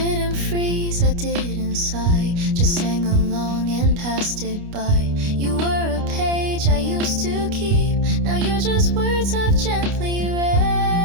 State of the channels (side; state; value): left; late; 29 ms